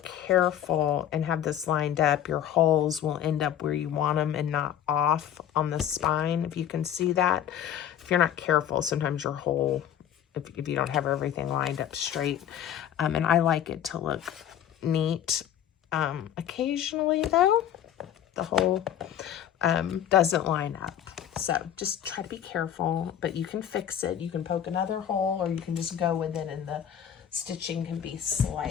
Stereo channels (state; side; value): quieter; right; 10.1 dB